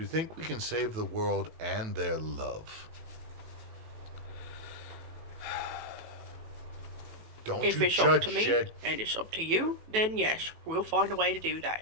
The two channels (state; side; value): late; left; 18 ms